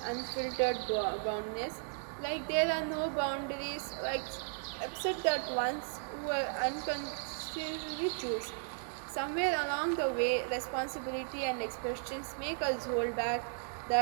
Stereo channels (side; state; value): left; silent; 54 dB below the other